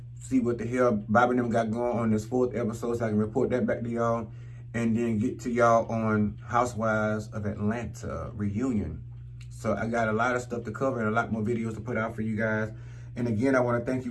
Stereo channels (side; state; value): both; identical; correlation 1.00